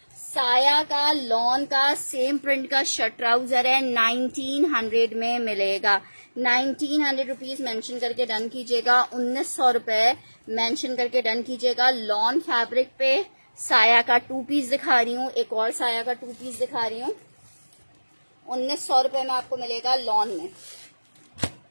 साया का लॉन का सेम प्रिंट का शर्ट ट्राउजर है, 1900 में मिलेगा। 1900 रुपीज मेंशन करके डन कीजिएगा, 1900 रुपए मेंशन करके डन कीजिएगा। लॉन फैब्रिक पे साया का 2 पीस दिखा रही हूँ, एक और साया का 2 पीस दिखा रही हूँ, 1900 रुपए में आपको मिलेगा लॉन में,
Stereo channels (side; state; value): both; inverted; correlation -1.00